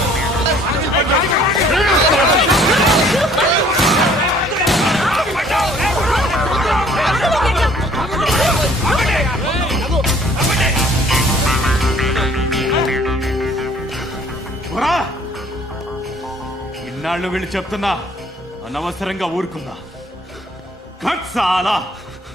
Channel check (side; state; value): both; normal; correlation 0.57